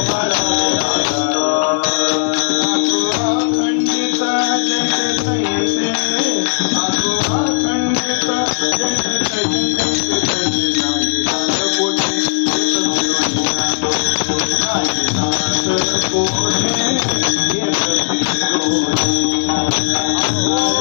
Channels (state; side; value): silent; right; digital silence